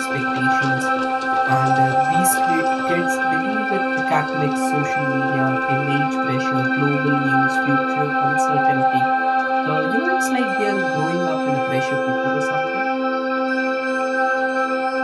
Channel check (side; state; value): both; identical; correlation 1.00